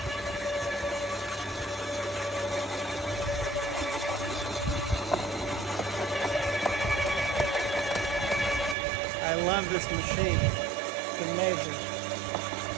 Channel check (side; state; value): left; drops out; at 8.8 s